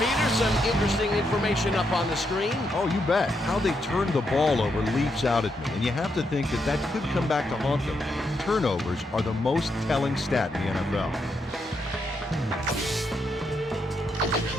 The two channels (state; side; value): normal; both; correlation 0.80